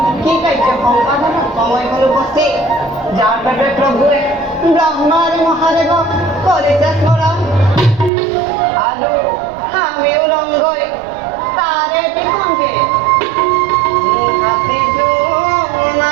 কি কার্য সম্পাদন সময় হল উপস্থিত যার পেটে প্রভুয়ে ব্রহ্মার মহাদেব করেছে স্মরণ আলু আমিও রঙ্গই তারে টিকঙ্কে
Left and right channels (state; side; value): drops out; left; at 8.1 s